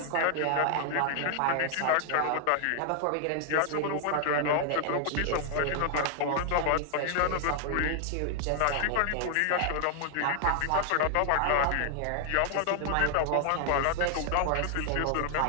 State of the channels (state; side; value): different; both; correlation 0.00